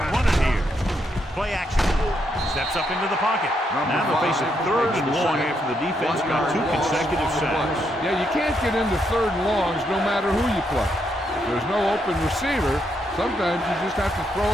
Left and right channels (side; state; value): both; normal; correlation 0.78